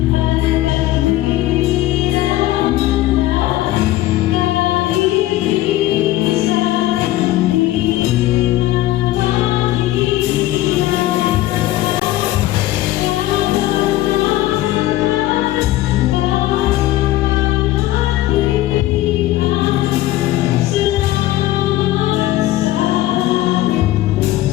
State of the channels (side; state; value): right; quieter; 15.6 dB